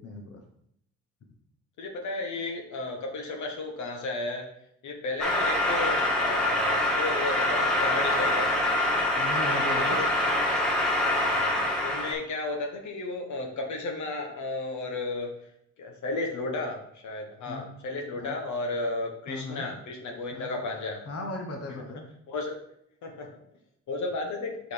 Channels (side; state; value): both; normal; correlation 0.17